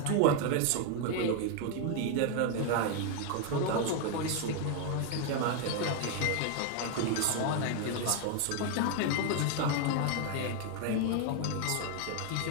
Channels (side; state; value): both; different; correlation 0.01